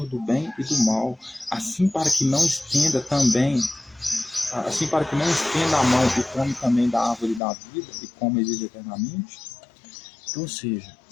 do bem e do mal, assim para que não estenda a mão e come também da árvore da vida e come e vive eternamente. Então, ou seja,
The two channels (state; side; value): drops out; right; at 7.4 s